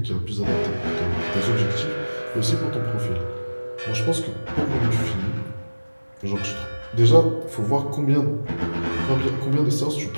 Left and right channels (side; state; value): both; inverted; correlation -1.00